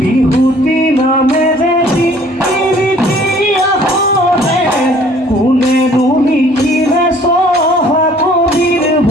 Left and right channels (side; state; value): both; normal; correlation 0.55